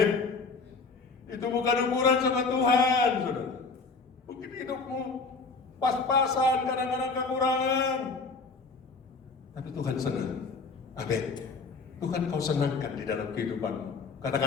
Itu bukan ukuran sama Tuhan, saudara. Mungkin hidupmu pas-pasan, kadang-kadang kekurangan, tapi Tuhan senang. Amin. Tuhan kau senangkan di dalam kehidupanmu.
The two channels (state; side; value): quieter; right; 4.3 dB